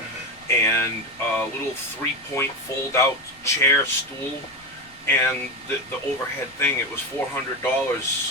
and a little 3-point fold-out chair stool and the overhead thing, it was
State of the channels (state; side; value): noise; left; rumble, 28 dB below the sound